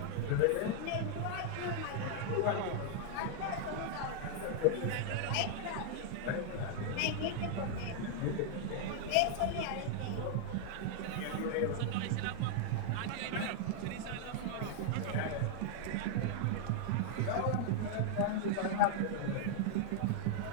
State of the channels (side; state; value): both; different; correlation -0.01